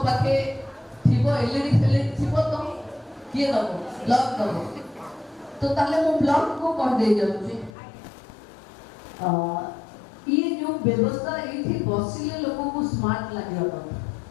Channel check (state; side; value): drops out; right; at 7.7 s